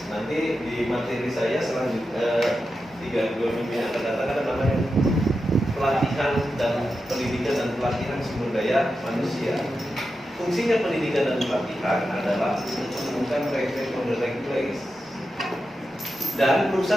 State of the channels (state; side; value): normal; both; correlation 0.90